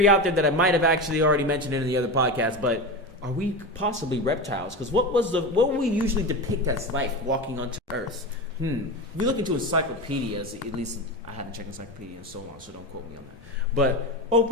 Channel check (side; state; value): both; normal; correlation 0.23